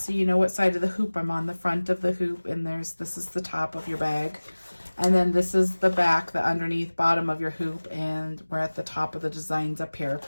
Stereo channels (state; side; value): inverted; both; correlation -1.00